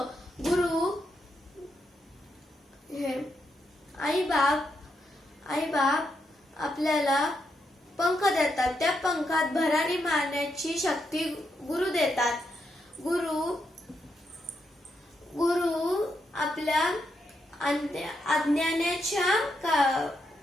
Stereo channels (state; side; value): normal; both; correlation 0.81